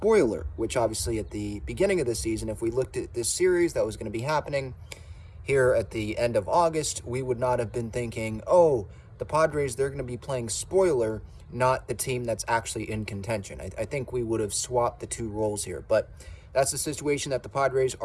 which obviously at the beginning of the season, if we looked at this series that was going to be happening here at the end of August, we would not have been thinking, oh, the Padres, they're going to be playing spoiler, not the team that's actually in contention. I think we would have swapped the two roles here, but that's the situation that the Padres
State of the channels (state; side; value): identical; both; correlation 1.00